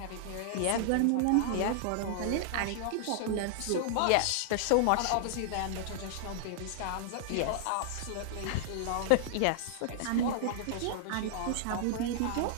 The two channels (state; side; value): different; both; correlation -0.01